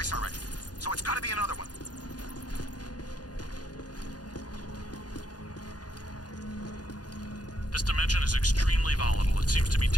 already, so it's gotta be another one. This dimension is extremely volatile. It seems to be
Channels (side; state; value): right; late; 0.69 ms